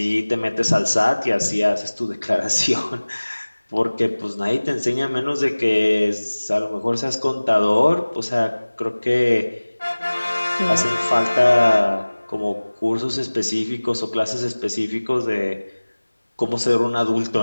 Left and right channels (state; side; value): inverted; both; correlation -1.00